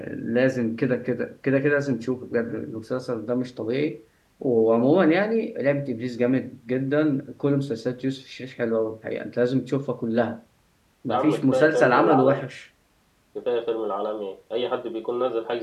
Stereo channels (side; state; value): both; identical; correlation 1.00